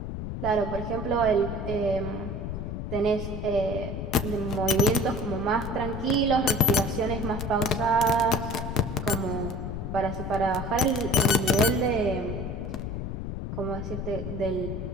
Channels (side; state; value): left; noise; rumble, 5 dB below the sound